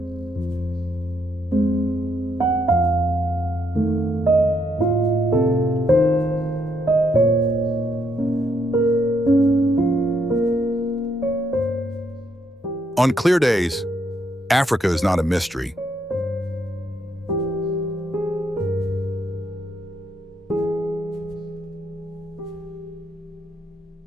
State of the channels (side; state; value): both; normal; correlation 0.75